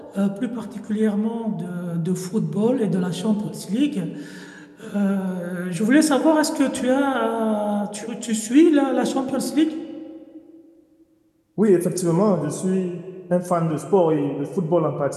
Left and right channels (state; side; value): identical; both; correlation 1.00